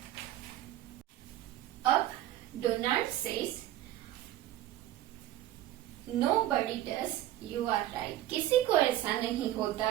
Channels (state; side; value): quieter; left; 13.9 dB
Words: अब Donald says nobody does, you are right, किसी को ऐसा नहीं